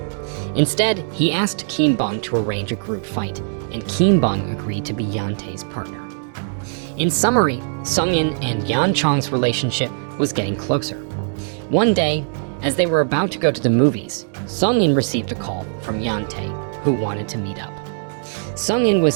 Instead, he asked Kim Bung to arrange a group fight, and Kim Bung agreed to be Hyeon Tae's partner. In summary, Seung In and Yeon Chong's relationship was getting closer. One day, as they were about to go to the movies, Seung In received a call from Hyeon Tae, who wanted to meet up. Seung In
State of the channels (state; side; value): silent; left; digital silence